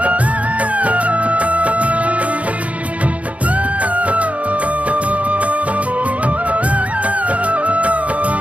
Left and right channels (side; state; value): left; late; 0.066 ms